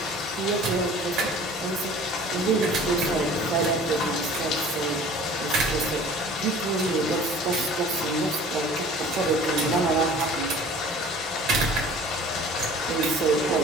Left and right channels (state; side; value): normal; both; correlation 0.47